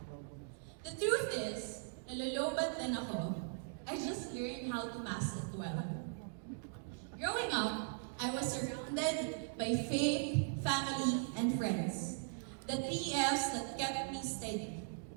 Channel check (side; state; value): left; silent; digital silence